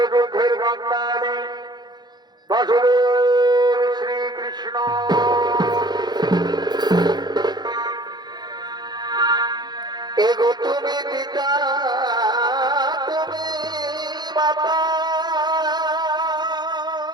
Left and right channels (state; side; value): late; left; 0.20 ms